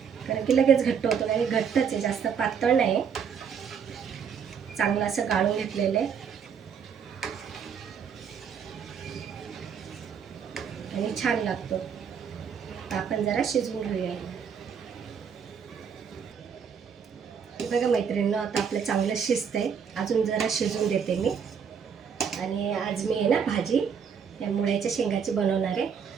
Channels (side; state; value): left; quieter; 7.1 dB